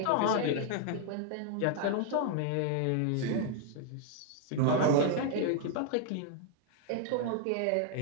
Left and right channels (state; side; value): different; both; correlation 0.00